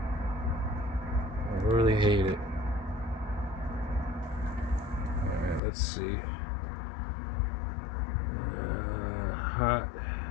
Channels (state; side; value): drops out; right; at 5.6 s